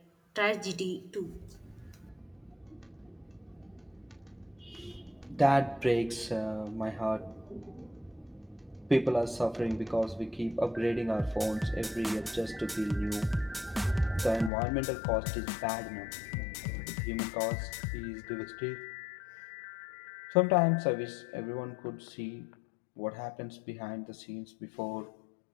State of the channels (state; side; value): drops out; right; at 14.5 s